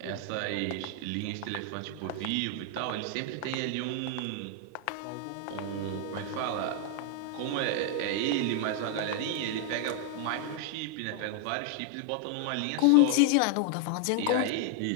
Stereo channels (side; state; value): both; different; correlation 0.00